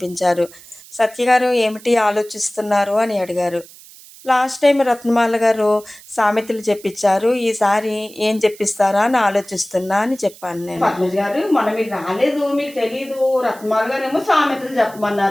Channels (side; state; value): right; noise; hiss, 21 dB below the sound